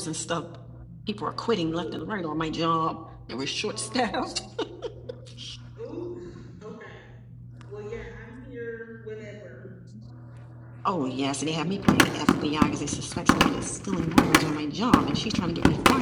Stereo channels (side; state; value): both; identical; correlation 1.00